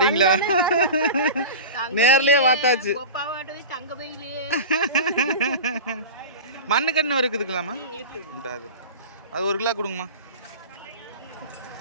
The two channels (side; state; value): both; inverted; correlation -0.31